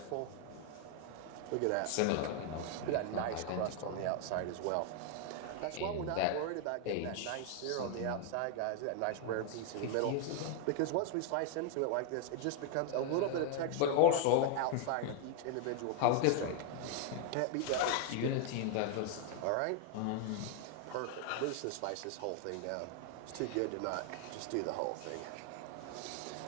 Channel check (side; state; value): both; different; correlation 0.00